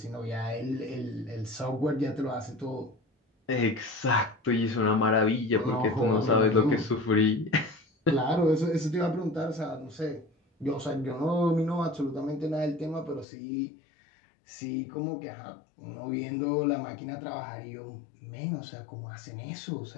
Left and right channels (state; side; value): drops out; right; at 13.2 s